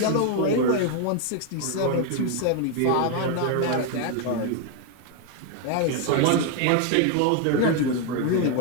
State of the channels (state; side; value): different; both; correlation 0.01